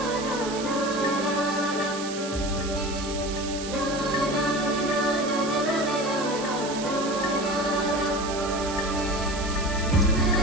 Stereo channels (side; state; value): right; noise; hiss, 9 dB below the sound